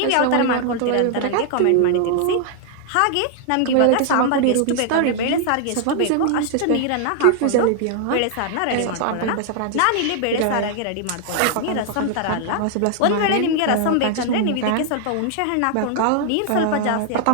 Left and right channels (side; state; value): both; different; correlation 0.00